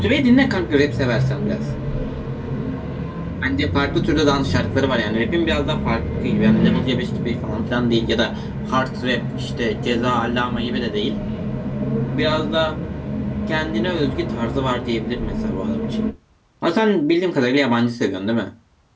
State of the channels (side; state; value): both; identical; correlation 1.00